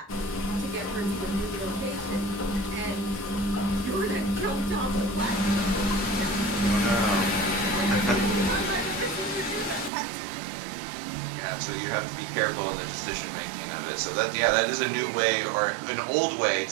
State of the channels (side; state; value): left; drops out; at 9.9 s